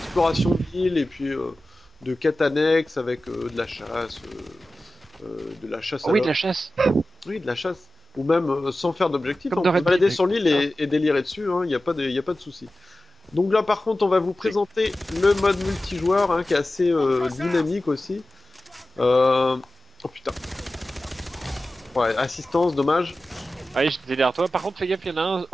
de l'île et puis de quêtes annexes avec de la chasse, Oh oui, de la chasse. Oui, de la chasse, ou même sans faire d'objectif, on peut se balader sur l'île et délirer dessus, il n'y a pas de souci. Donc là par contre on va vous présenter le mode multijoueur hein, qui est assez dynamique aussi. Oh putain. Ouais, assistance, dommage. Ah oui, j'étais derrière toi. Par contre, fais gaffe, il y en a un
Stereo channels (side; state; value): both; normal; correlation 0.95